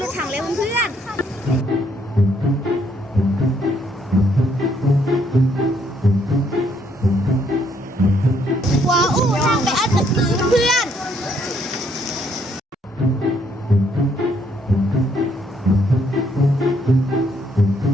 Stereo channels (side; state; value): both; normal; correlation 0.70